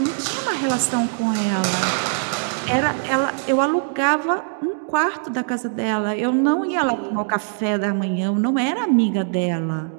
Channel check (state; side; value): silent; left; digital silence